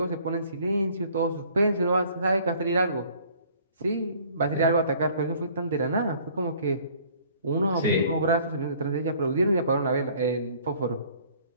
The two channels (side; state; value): both; inverted; correlation -0.55